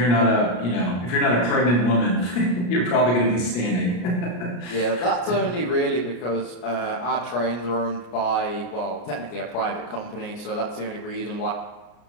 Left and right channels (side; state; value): right; late; 33 ms